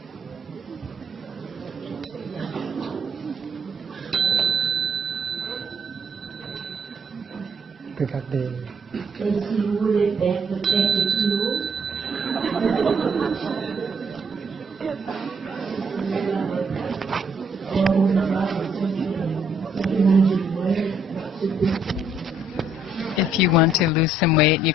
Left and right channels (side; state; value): both; normal; correlation 0.69